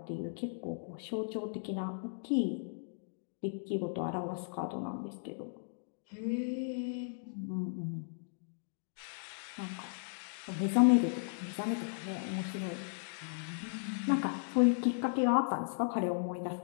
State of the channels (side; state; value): right; silent; digital silence